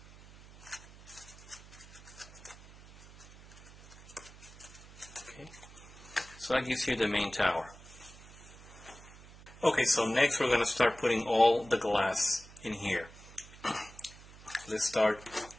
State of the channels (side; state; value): right; noise; hum, 20 dB below the sound